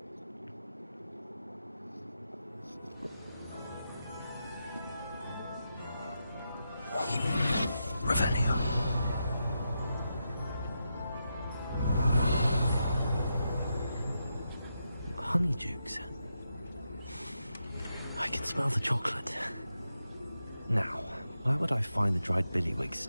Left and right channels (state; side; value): inverted; both; correlation -0.86